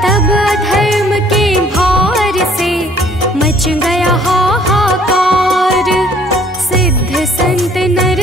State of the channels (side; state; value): both; normal; correlation 0.58